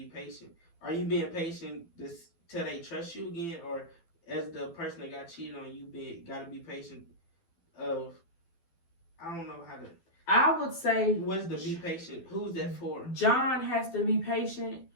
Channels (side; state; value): right; late; 12 ms